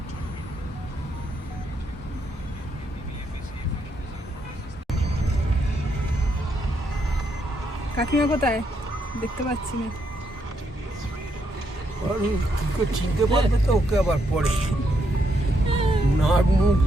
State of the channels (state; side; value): normal; both; correlation 0.77